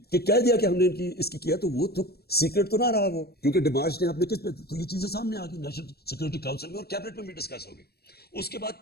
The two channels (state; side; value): late; right; 0.46 ms